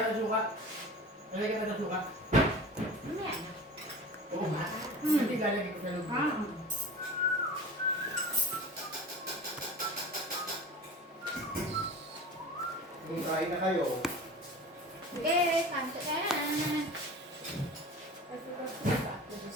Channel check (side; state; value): both; normal; correlation 0.36